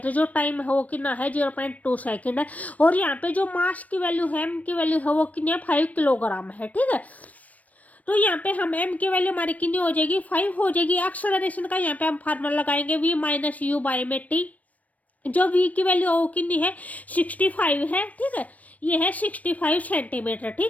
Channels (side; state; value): right; late; 0.070 ms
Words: जो टाइम है वो कितना है, 0.2 सेकंड है। और यहाँ पे जो मास की वैल्यू है, m की वैल्यू है वो कितनी है, 5 किलोग्राम है। ठीक है, तो यहाँ पे हम m की वैल्यू हमारी कितनी हो जाएगी, 5 हो जाएगी। एक्सेलरेशन का यहाँ पे हम फार्मूला लगाएंगे v माइनस यू बाई में t, जो v की वैल्यू वो कितनी है, 65 है। ठीक है, ये है 65 सेंटीमीटर।